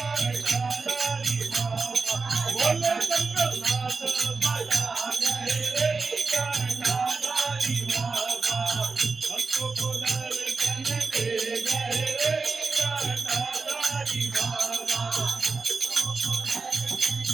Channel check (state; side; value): quieter; left; 4.3 dB